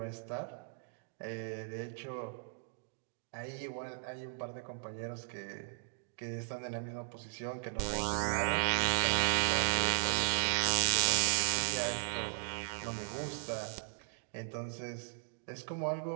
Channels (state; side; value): silent; left; digital silence